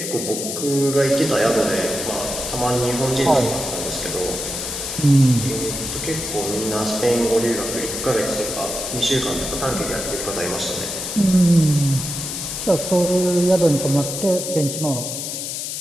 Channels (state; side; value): noise; left; hiss, 5 dB below the sound